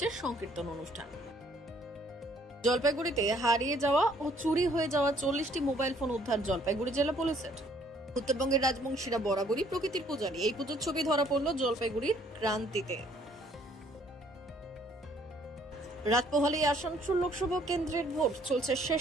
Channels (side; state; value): both; normal; correlation 0.62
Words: সংকীর্তন অনুষ্ঠান। জলপাইগুড়িতে হারিয়ে যাওয়া ও চুরি হয়ে যাওয়া 40টি মোবাইল ফোন উদ্ধার জলপাইগুড়ি জেলা পুলিশের। উত্তরবঙ্গের রাজবংশীরা বরাবরই প্রকৃতির পূজারী। এই পুজোর ছবি ধরা পড়ল জলপাইগুড়ির ক্রান্তিতে। রাত পোহালে আসানসোল লোকসভা কেন্দ্রের ভোট চলছে